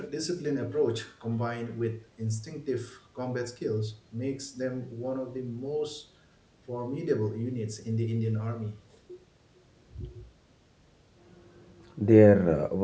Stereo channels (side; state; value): both; identical; correlation 1.00